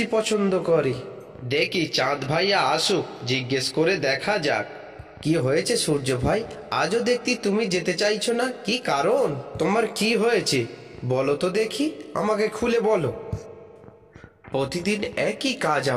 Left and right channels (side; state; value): both; identical; correlation 1.00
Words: পছন্দ করে। দেখি চাঁদ ভাইয়া আসুক, জিজ্ঞেস করে দেখা যাক। কি হয়েছে সূর্য ভাই, আজও দেখতি তুমি যেতে চাইছো না? কি কারণ? তোমার কি হয়েছে বলো তো দেখি, আমাকে খুলে বলো। প্রতিদিন একই কাজ